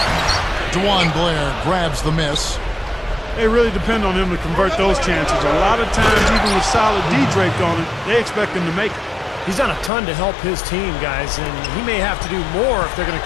DeJuan Blair grabs the miss. They really depend on him to convert those chances. A lot of times, even with solid D draped on it, they expect him to make it. He's done a ton to help his team, guys, and he may have to do more if they're going to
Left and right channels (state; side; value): drops out; right; at 9.9 s